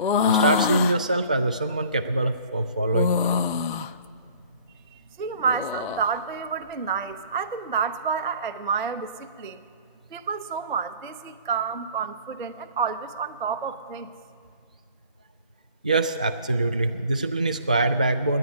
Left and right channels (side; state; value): both; inverted; correlation -0.51